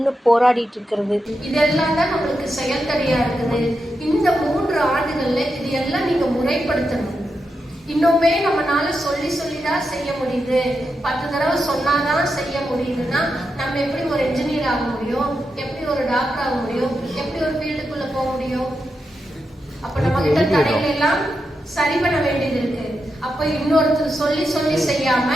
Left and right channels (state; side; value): normal; both; correlation 0.87